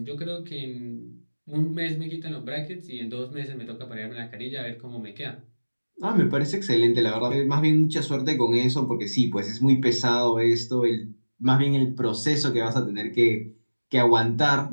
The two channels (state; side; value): inverted; both; correlation -1.00